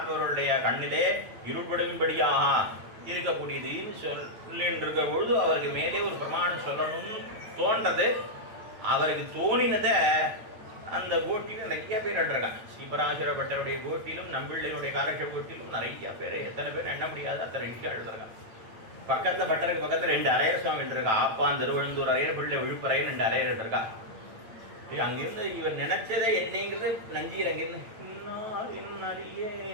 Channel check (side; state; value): left; late; 8.8 ms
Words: கண்ணிலே இருள்படும்படியாக இருக்கக்கூடியது சொல்லின்றிருக்க பொழுது அவருக்கு மேலே ஒரு பிரமாணம் சொல்லணும்னு தோன்றது. அவருக்கு தோணினதை அந்த கோட்டிலும் நிறைய பேர் எடுறாங்க. ஸ்ரீபராசர பட்டருடைய கோட்டிலும் நம்பிள்ளையுடைய காலக்ஷேப கோட்டிலும் நிறைய பேர், எத்தனை பேர் எண்ண முடியாது அத்தனை விஷயம் எழுதுறாங்க. பக்கத்தில் பட்டருக்கு பக்கத்தில் 2 அரையர் சுவாமி இருக்கா. ஆப்பான் திருவழுந்தூர் அரையர், பிள்ளை விழுப்புறையர் 2 அரையர் இருக்கா. அங்கிருந்து இவர் நினைச்சதை என்னங்கிறது நஞ்சீர் அங்கிருந்து இன்னாரின்